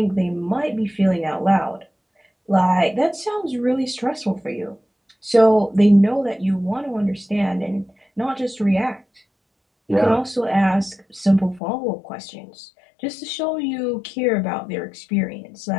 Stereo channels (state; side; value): drops out; right; at 11.6 s